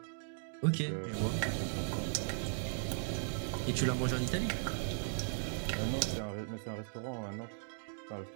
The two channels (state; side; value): silent; left; digital silence